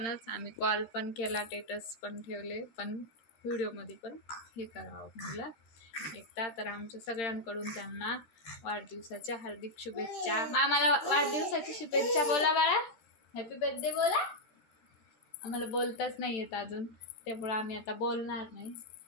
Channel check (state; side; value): late; right; 13 ms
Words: आम्ही कॉल पण केला, स्टेटस पण ठेवले, पण व्हिडिओमध्ये पण हे करावं म्हटलं एकदा. तर आमच्या सगळ्यांकडून त्यांना वाढदिवसाच्या हार्दिक शुभेच्छा. मामाला वाढदिवसाची शुभेच्छा बोला बाळा, हॅपी बर्थडे बोला. आम्हाला बोलताच नाही येत अजून, त्यामुळं आम्ही आता बोलणार नाही.